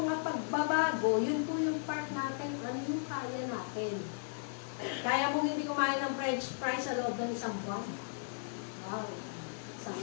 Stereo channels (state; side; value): silent; right; 54 dB below the other